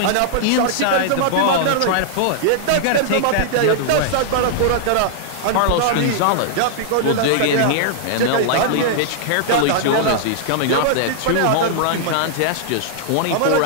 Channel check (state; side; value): different; both; correlation -0.01